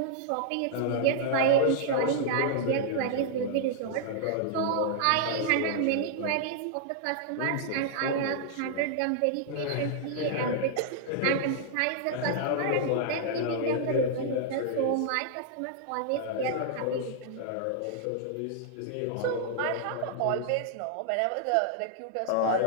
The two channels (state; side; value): different; both; correlation -0.01